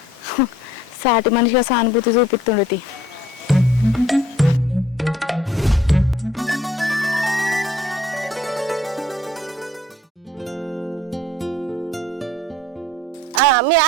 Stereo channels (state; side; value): normal; both; correlation 0.57